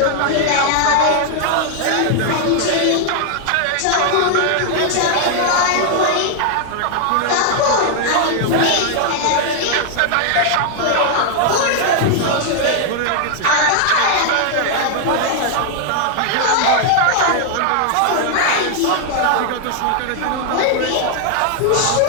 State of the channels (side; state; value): both; different; correlation 0.00